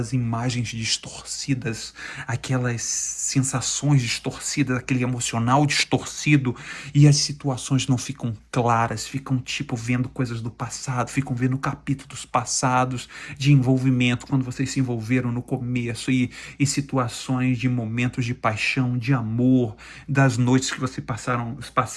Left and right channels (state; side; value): identical; both; correlation 1.00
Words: imagens distorcidas, aquelas sensações distorcidas, aquele emocional distorcido, e as situações não ficam claras, ficam tipo vendo coisas do passado, ficam vendo capítulos passados de envolvimento, quando vocês se envolveram no começo, e situações de momentos de paixão, de amor, das noites que vocês